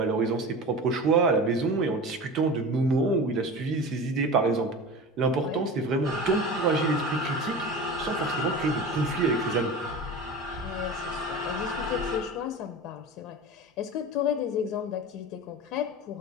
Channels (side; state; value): both; normal; correlation 0.31